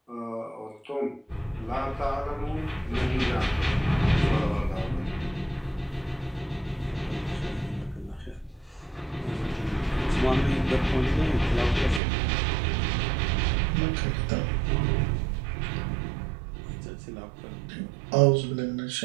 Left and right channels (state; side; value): drops out; left; at 12.0 s